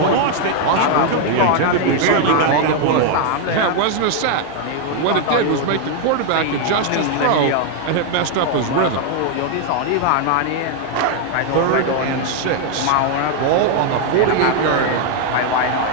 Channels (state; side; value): different; both; correlation 0.00